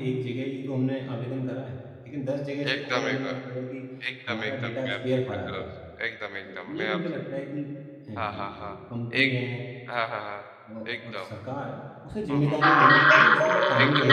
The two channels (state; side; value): identical; both; correlation 1.00